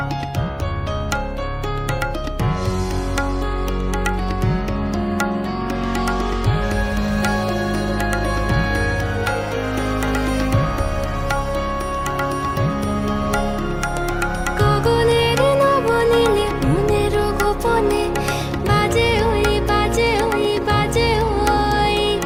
গগনের নবনীলে, মনের গোপনে, বাজে ওই বাজে ওই বাজে ওই।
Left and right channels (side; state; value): both; identical; correlation 1.00